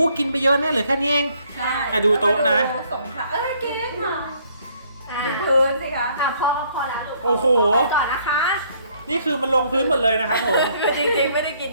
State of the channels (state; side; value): inverted; both; correlation -0.65